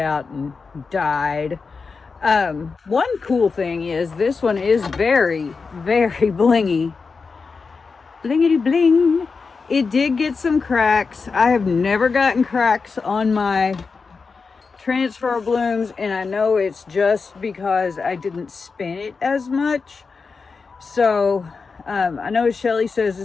and died. One cool thing is this one is very, very blingy. Blingity bling. It did get some cracks. I have never gotten cracks on my transfer blooms, and I know it's just because I didn't spin it as much. So I know Shelly says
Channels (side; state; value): right; quieter; 4.8 dB